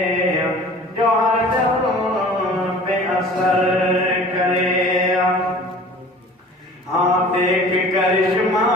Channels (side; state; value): both; normal; correlation 0.45